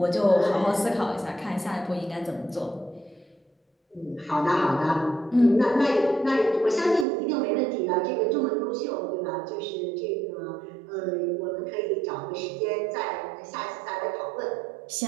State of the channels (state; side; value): drops out; left; at 7.1 s